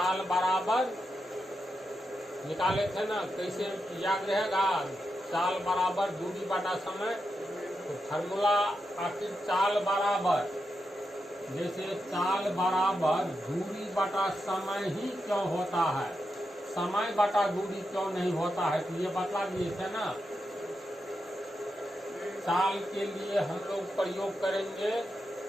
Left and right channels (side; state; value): both; normal; correlation 0.87